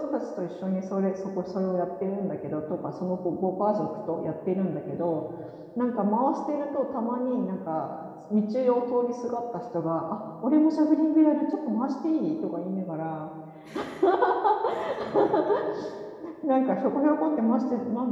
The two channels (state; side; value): identical; both; correlation 1.00